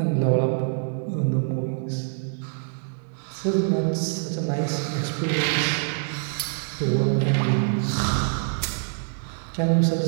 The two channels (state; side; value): silent; left; digital silence